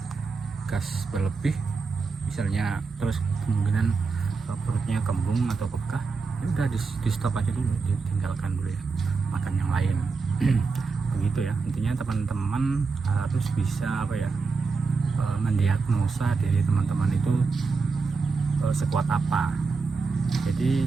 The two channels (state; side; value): quieter; left; 4.6 dB